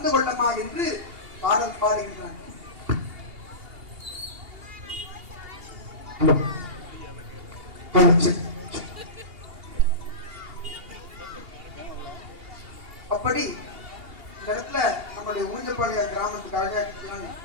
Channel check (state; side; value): late; left; 2.8 ms